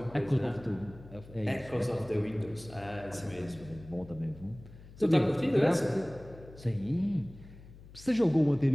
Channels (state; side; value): noise; left; hum, 19 dB below the sound